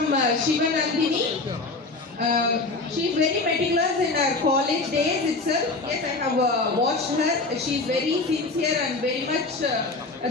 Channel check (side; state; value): right; quieter; 3.5 dB